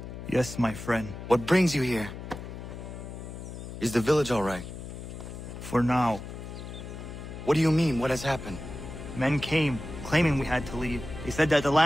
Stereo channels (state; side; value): noise; left; hum, 10 dB below the sound